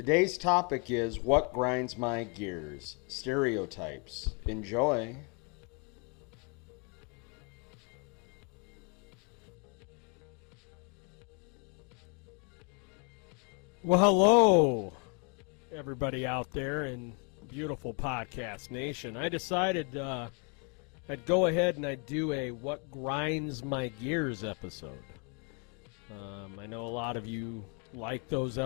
topic is what grinds my gears, stereotypes. Enjoy. Well, hello, everybody out there in beautiful podcast nation. I decided I'd go ahead and I'd do a What Grinds My Gears episode. I know a lot of you like those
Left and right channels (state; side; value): quieter; right; 35.6 dB